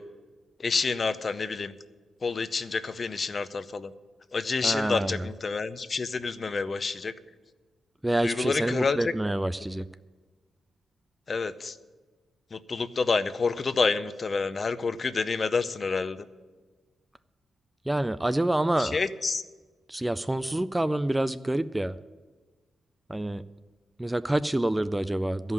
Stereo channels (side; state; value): both; normal; correlation 0.94